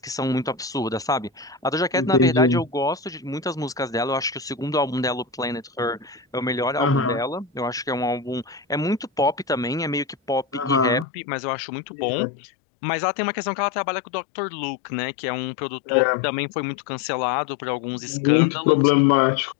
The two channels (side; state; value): right; drops out; at 11.1 s